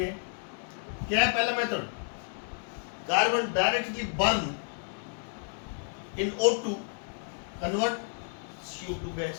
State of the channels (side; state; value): right; silent; 57 dB below the other